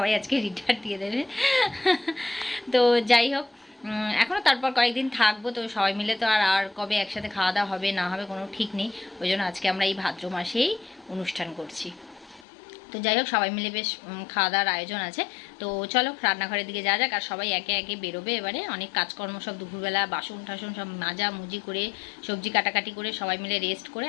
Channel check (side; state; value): right; drops out; at 12.5 s